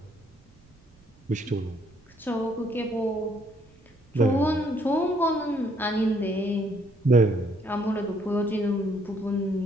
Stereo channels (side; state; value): right; noise; rumble, 28 dB below the sound